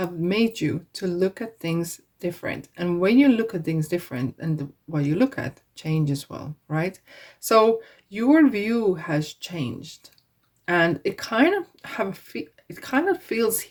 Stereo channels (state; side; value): identical; both; correlation 1.00